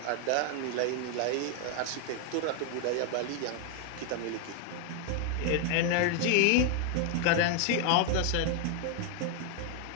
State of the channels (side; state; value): both; different; correlation 0.01